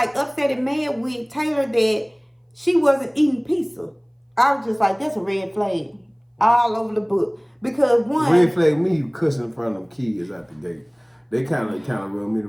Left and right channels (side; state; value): both; identical; correlation 1.00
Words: upset and mad with Taylor that she wasn't eating pizza. I was just like, that's a red flag all over the book. Because one... Red flag me, you cussing in front of them kids out the gate. They kind of rub me the